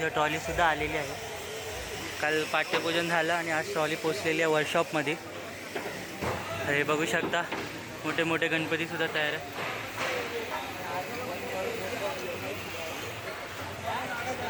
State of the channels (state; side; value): identical; both; correlation 1.00